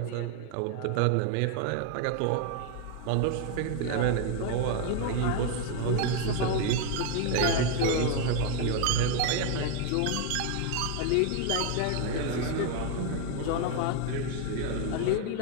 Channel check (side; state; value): both; different; correlation 0.01